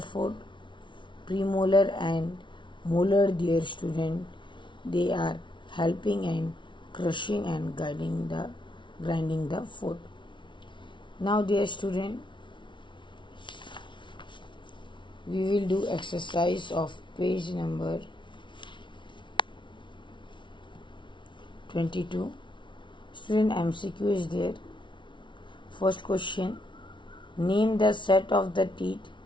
food. Premolar and molar, dear student, they are helping in crushing and grinding the food. Now, dear student, we will do exercise of page number 22. Student, MCQ is there. First question, name the set of the teeth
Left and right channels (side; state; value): right; late; 0.24 ms